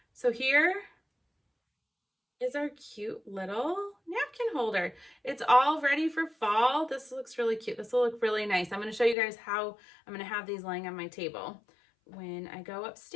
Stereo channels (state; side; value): drops out; right; at 9.2 s